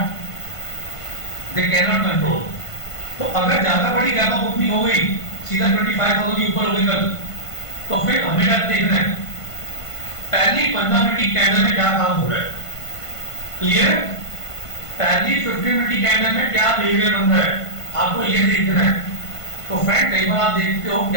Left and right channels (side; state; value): right; late; 1.5 ms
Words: they can not control. तो अगर ज्यादा बड़ी गैप अप ओपनिंग हो गई, सीधा 25,000 के ऊपर हो गई कल, तो फिर हमें क्या देखना है, पहली 15 मिनट की कैंडल में क्या काम हो रहा है, क्लियर? पहली 15 मिनट की कैंडल में क्या बिहेवियर बन रहा है, आपको ये देखना है। तो फ्रेंड कई बार आप देखते हो